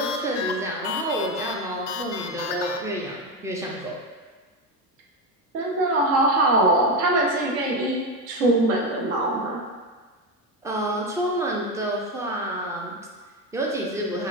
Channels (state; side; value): normal; both; correlation 0.13